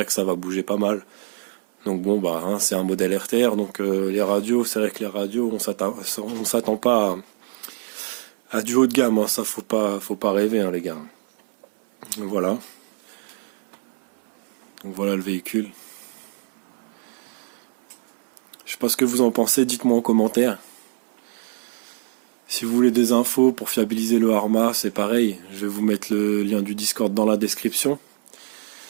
que ça va bouger pas mal. Donc bon bah hein, c'est un modèle RTR, donc les radios, c'est vrai que les radios on s'attend pas à du haut de gamme, hein, ça faut pas rêver hein, les gars. Donc voilà. Donc voilà le véhicule. Je sais pas ce que vous en pensez, dites-moi en commentaire. Si vous voulez des infos pour fiabiliser le Arma, c'est pareil, je vais vous mettre le lien du Discord dans la description.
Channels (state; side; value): silent; left; 60 dB below the other